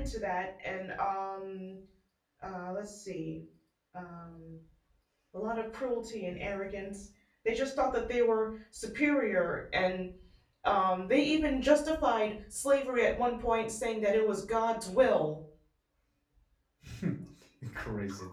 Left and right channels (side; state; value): both; identical; correlation 1.00